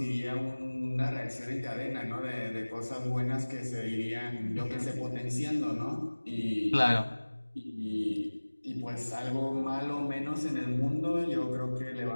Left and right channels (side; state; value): both; inverted; correlation -1.00